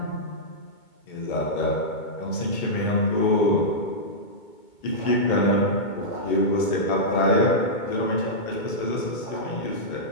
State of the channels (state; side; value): late; right; 2.2 ms